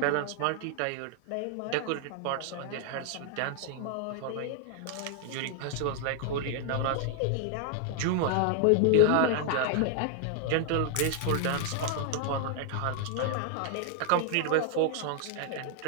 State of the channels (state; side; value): different; both; correlation 0.00